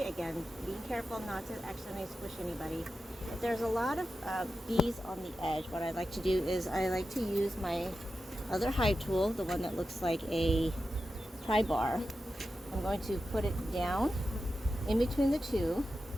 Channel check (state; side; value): normal; both; correlation 0.91